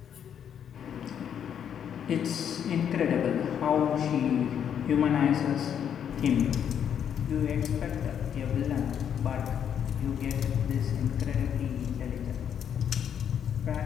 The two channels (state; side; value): quieter; right; 8.7 dB